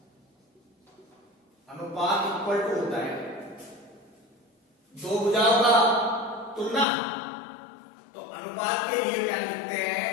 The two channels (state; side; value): drops out; right; at 6.9 s